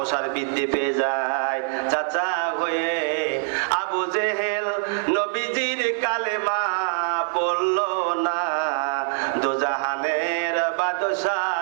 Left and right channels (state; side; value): silent; left; digital silence